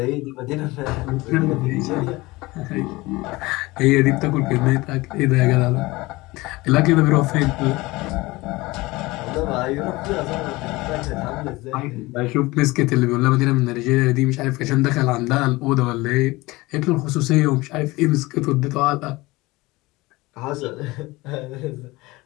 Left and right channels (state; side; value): quieter; right; 21.2 dB